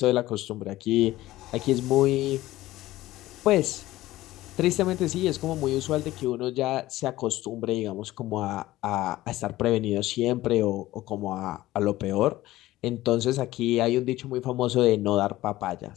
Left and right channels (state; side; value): quieter; right; 16.4 dB